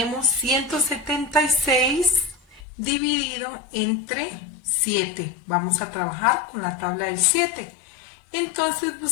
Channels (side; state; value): right; drops out; at 2.7 s